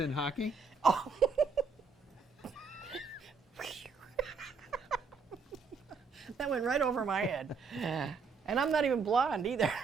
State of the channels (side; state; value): left; quieter; 5.0 dB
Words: in hockey? That went right over my head. And I'm not even blonde either.